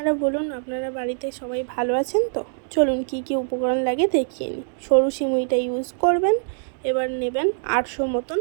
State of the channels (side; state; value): left; silent; digital silence